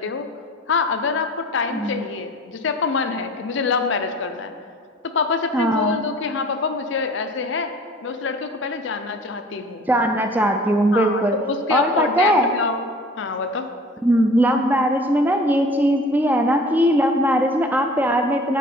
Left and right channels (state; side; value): normal; both; correlation 0.46